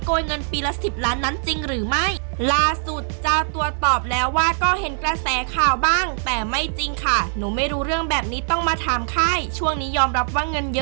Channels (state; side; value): silent; left; digital silence